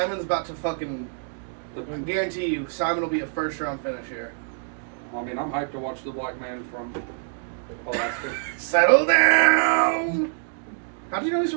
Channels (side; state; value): left; silent; digital silence